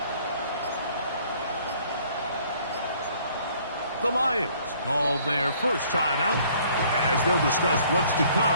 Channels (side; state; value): both; inverted; correlation -0.59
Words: The Lions call their first timeout as they'll discuss what's to